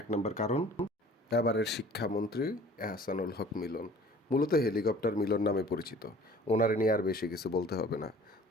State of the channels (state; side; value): normal; both; correlation 0.49